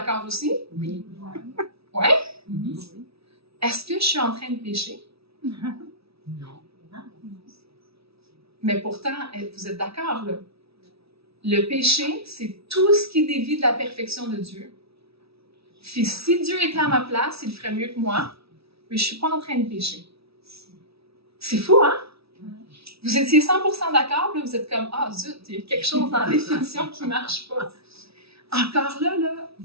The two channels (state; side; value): late; left; 0.77 ms